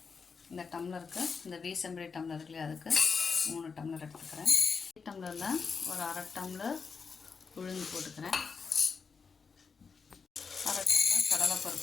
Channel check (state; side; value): quieter; right; 5.4 dB